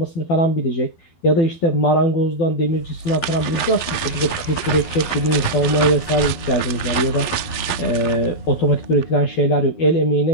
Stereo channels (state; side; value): late; right; 12 ms